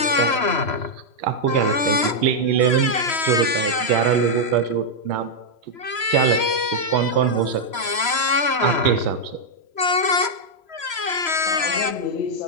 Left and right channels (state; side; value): late; right; 3.0 ms